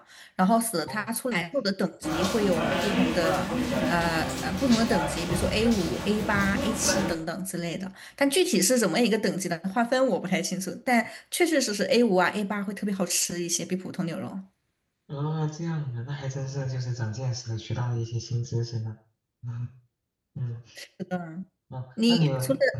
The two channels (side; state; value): both; identical; correlation 1.00